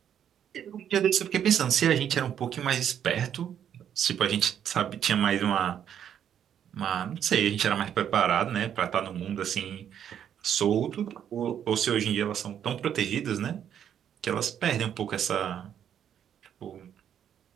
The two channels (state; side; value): quieter; left; 9.3 dB